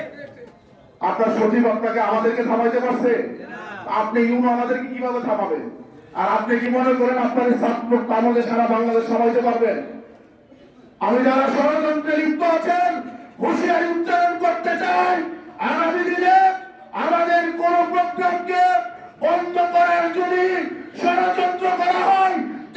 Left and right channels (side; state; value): both; identical; correlation 1.00